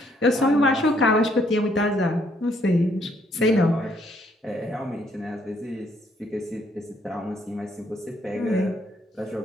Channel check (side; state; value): both; normal; correlation 0.69